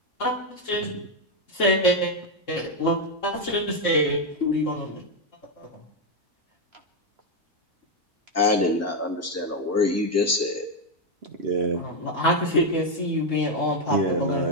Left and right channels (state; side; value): normal; both; correlation 0.04